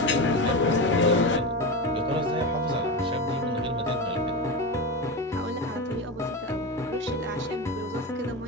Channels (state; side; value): normal; both; correlation 0.19